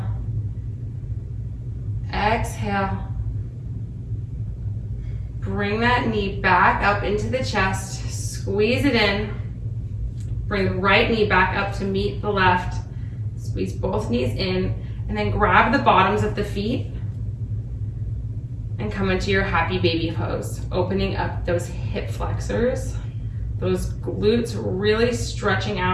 Exhale. Bring that knee back up into the chest. Squeeze it in. Bring the right knee back up to meet the left. Squeeze both knees in, and then grab the bottoms of the feet and come into your happy baby pose, opening up those hip flexors, those glutes, really stretching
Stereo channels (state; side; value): identical; both; correlation 1.00